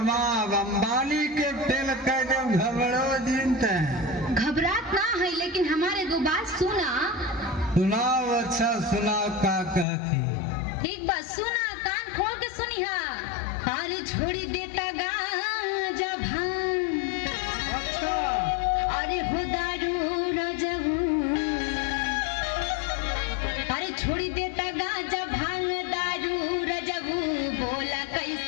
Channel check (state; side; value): drops out; right; at 9.9 s